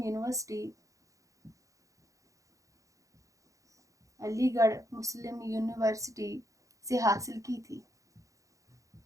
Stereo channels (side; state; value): left; late; 0.16 ms